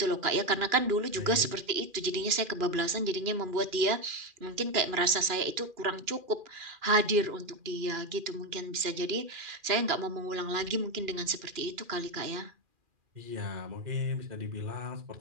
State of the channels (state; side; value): late; left; 2.4 ms